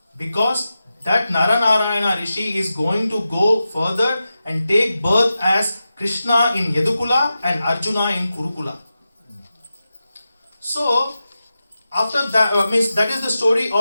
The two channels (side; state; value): both; inverted; correlation -0.92